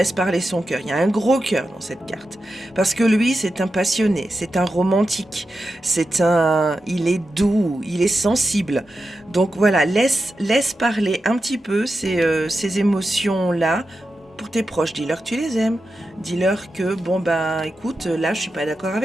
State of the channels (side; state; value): both; normal; correlation 0.90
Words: parler son cœur. Il y a un gros cœur dans cette carte. Parce que lui, c'est un passionné, c'est un romantique, il est doux, il est sensible. Donc voilà, laisse parler un petit peu ces émotions-là pour tes proches. Dis-leur que tu les aimes. Dis-leur que, écoute, là, je suis pas d'accord